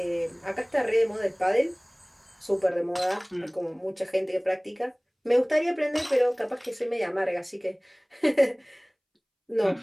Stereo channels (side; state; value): both; identical; correlation 1.00